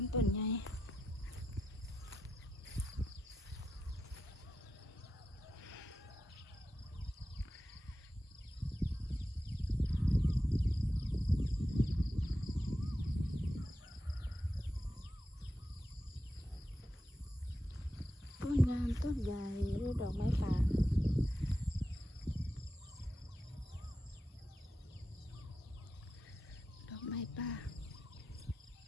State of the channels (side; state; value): both; normal; correlation 0.88